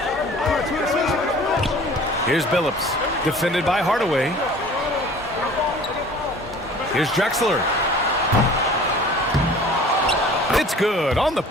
Here's Billups, defended by Hardaway. Here's Drexler. It's good on the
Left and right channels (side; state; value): both; normal; correlation 0.46